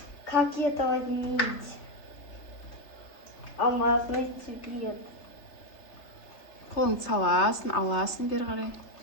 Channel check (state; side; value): late; right; 3.3 ms